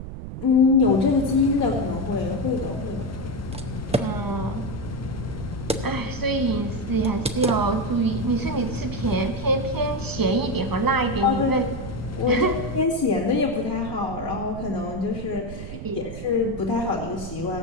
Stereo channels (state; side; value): noise; right; rumble, 9 dB below the sound